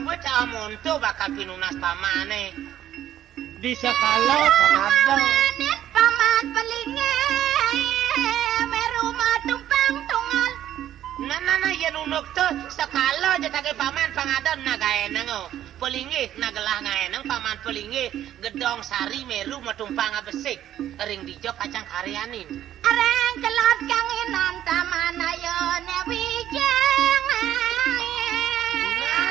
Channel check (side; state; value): left; quieter; 11.7 dB